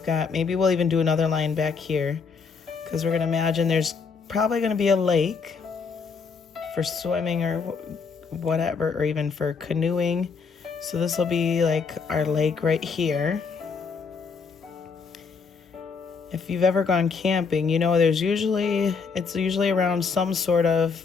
got, maybe we'll even do another line back here, because we're going to imagine there's probably going to be a lake for swimming or whatever, or even for canoeing. So this will be like our lake right here. If you've ever gone camping, you know it's usually around some sort of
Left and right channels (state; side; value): quieter; right; 5.3 dB